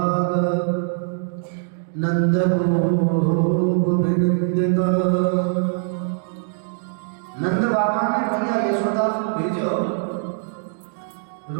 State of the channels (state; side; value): silent; left; digital silence